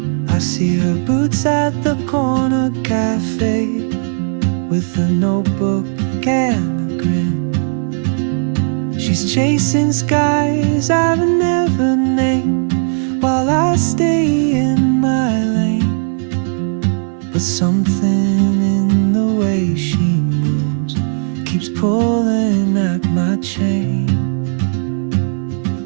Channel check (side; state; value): left; silent; 62 dB below the other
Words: I see her boots at the corner cafe, with a notebook and a grin. She's chasing skies I've never named, while I stay in my lane. But something